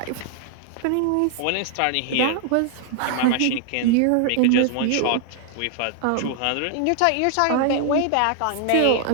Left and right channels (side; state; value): both; different; correlation 0.00